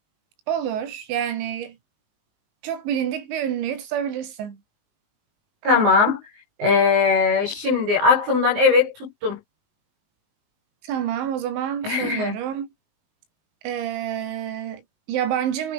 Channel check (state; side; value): late; left; 19 ms